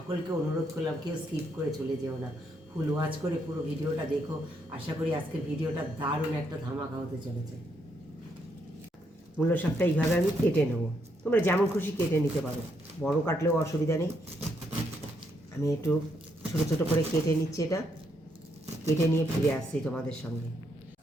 অনুরোধ করলাম, কেউ স্কিপ করে চলে যেও না, ফুল ওয়াচ করে পুরো ভিডিওটা দেখো। আশা করি আজকের ভিডিওটা দারুণ একটা ধামাকা হতে চলেছে। মূলো শাকটা এইভাবে আমি কেটে নেবো, তোমরা যেমন খুশি কেটে নিতে পারো, বড় কাটলেও অসুবিধা নেই। আমি একটু ছোটো ছোটো করে কেটে নিচ্ছি, এটা কেটে নিয়ে ফিরে আসছি তোমাদের সঙ্গে।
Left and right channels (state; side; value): normal; both; correlation 0.76